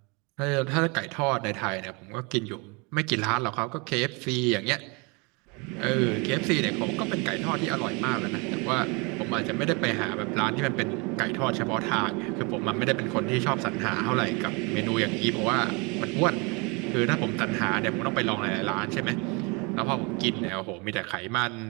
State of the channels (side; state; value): left; quieter; 29.7 dB